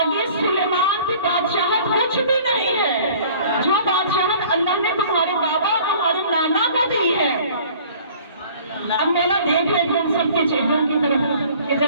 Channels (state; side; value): inverted; both; correlation -0.50